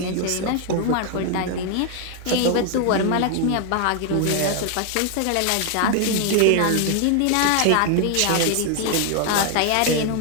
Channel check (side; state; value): both; different; correlation 0.00